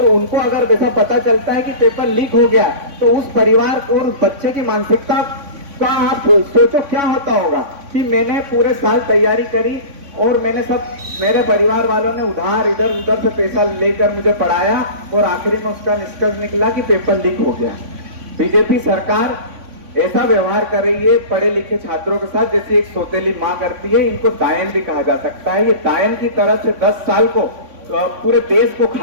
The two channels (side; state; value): left; late; 3.5 ms